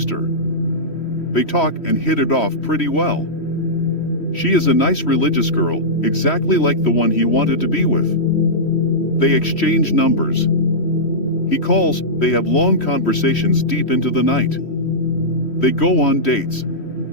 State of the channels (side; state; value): right; late; 3.1 ms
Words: They talk and hit it off pretty well. She is a nice religious girl, exactly like the one he wanted to be with. They exchange numbers. He calls, they have long conversations deep into the night. They go on dates.